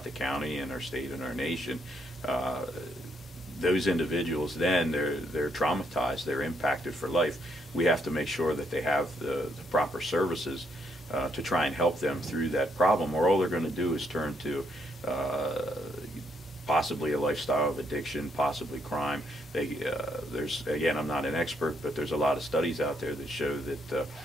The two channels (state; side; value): normal; both; correlation 0.74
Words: the county and our state and our nation, those individuals then they're traumatized, they're impacted for life. We have to make sure that they have the proper services to try and help them through that problem, or all they're going to do is turn to possibly a lifestyle of addiction, possibly crime. There's, again, I'm not an expert, but there's a lot of studies out there that show that